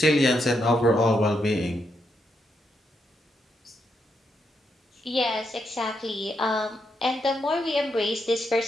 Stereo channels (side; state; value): both; normal; correlation 0.80